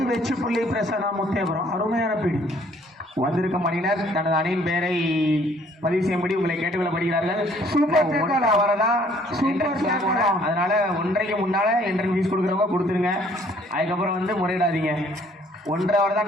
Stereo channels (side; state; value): both; normal; correlation 0.61